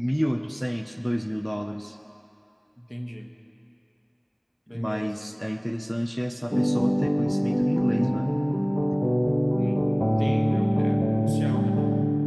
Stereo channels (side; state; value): both; identical; correlation 1.00